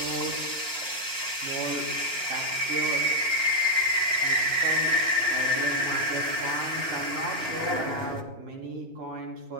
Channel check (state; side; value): late; left; 2.9 ms